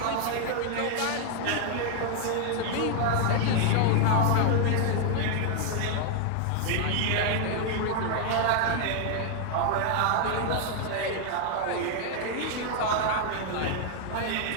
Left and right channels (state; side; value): different; both; correlation 0.00